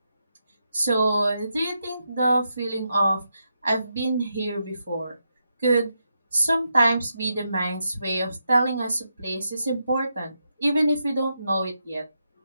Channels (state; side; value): inverted; both; correlation -0.84